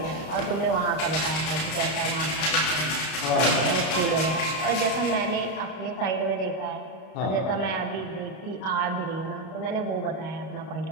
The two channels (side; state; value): right; late; 32 ms